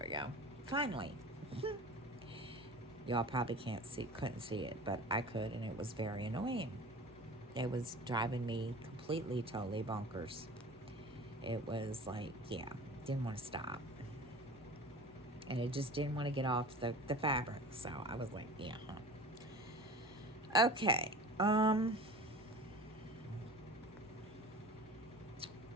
we go. Finally. Y'all probably couldn't see it, but I could, and it was very annoying. It was driving me completely, totally bonkers. It was like, yeah, didn't want to stop. And it just didn't want to get off the fabric. So I was like, yeah. Okay.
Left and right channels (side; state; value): both; normal; correlation 0.38